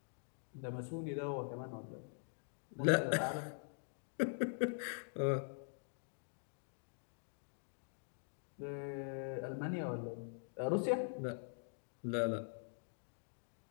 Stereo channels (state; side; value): silent; right; digital silence